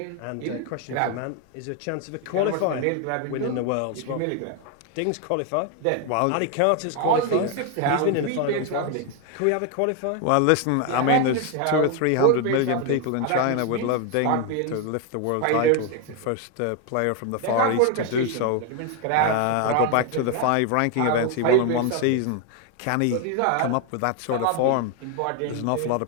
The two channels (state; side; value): different; both; correlation 0.01